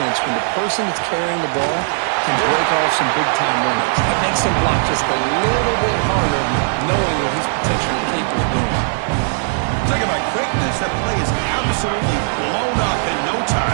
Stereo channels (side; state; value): left; silent; 67 dB below the other